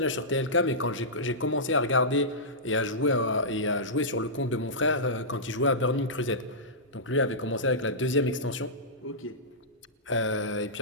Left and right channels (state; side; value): normal; both; correlation -0.15